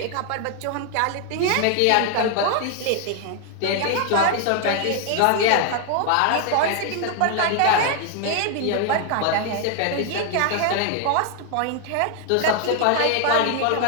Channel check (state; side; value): different; both; correlation 0.00